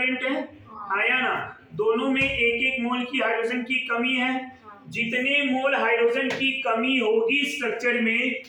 है, आया ना? दोनों में 1-1 मोल की हाइड्रोजन की कमी है। जितने मोल हाइड्रोजन की कमी होगी स्ट्रक्चर में,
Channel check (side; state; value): both; identical; correlation 1.00